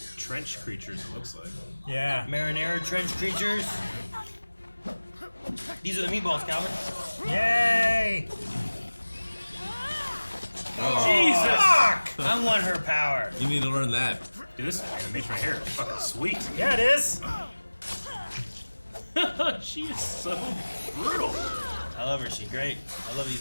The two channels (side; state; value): both; inverted; correlation -1.00